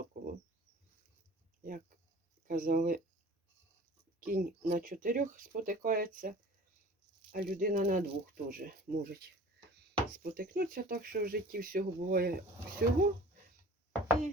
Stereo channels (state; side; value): normal; both; correlation 0.45